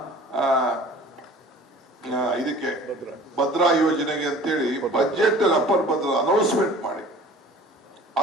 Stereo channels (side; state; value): both; normal; correlation 0.46